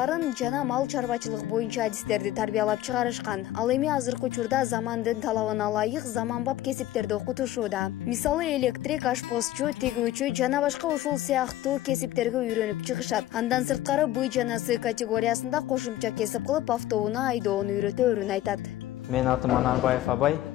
жана мал чарбачылык боюнча адистерди тарбиялап чыгарышкан. Ал эми азыркы учурда замандын талабына ылайык заманбап кесиптерди окутушууда. Мисалы электрик, ашпозчу, тигүүчү жана башка ушул сыяктуу кесиптерге үйрөнүп чыгышат. Андан сырткары Б жана С категориясында кошумча кесип кылып автоунаа айдоону үйрөтөөрүн айтат. Мен атым Анарбаев Абай.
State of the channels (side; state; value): right; quieter; 14.3 dB